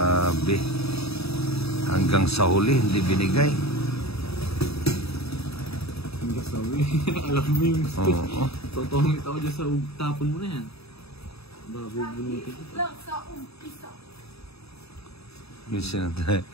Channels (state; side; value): late; right; 0.78 ms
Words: Hanggang sa huli, hindi binigay. Hanggang sa huli. Alam mo yung gusto. Oo. Totongit ako dyan sa tapon mo na yan. Babubunutin ko. Lang sa umpisa. Yung sinatay.